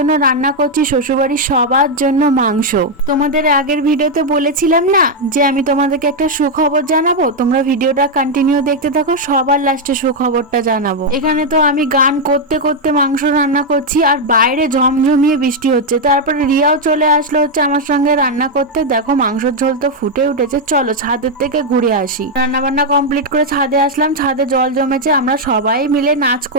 রান্না করছি শ্বশুরবাড়ির সবার জন্য মাংস। তোমাদের আগের ভিডিওতে বলেছিলাম না যে আমি তোমাদেরকে একটা সুখবর জানাবো, তোমরা ভিডিওটা কন্টিনিউ দেখতে থাকো, সবার লাস্টে সুখবরটা জানাবো। এখানে তো আমি গান করতে করতে মাংস রান্না করছি, আর বাইরে ঝমঝমিয়ে বৃষ্টি হচ্ছে। তারপরে রিয়াও চলে আসলো হচ্ছে আমার সঙ্গে রান্না করতে। দেখো মাংসের ঝোল তো ফুটে উঠেছে, চলো ছাদের থেকে ঘুরে আসি। রান্না বান্না কমপ্লিট করে ছাদে আসলাম, ছাদে জল জমেছে, আমরা সবাই মিলে নাচ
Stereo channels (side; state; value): both; normal; correlation 0.00